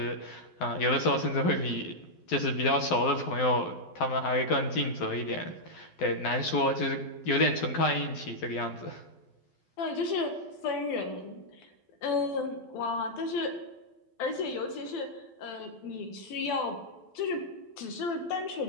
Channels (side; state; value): right; late; 12 ms